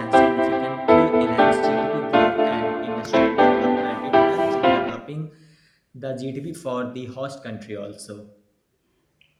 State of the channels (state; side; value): identical; both; correlation 1.00